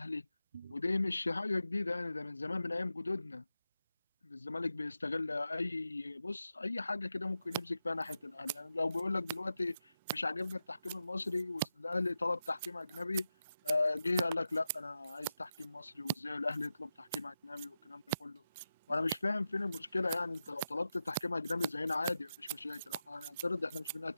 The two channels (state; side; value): inverted; both; correlation -0.90